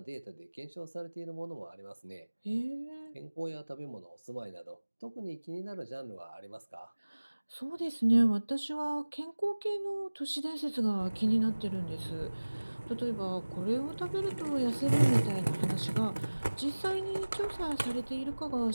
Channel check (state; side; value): inverted; both; correlation -1.00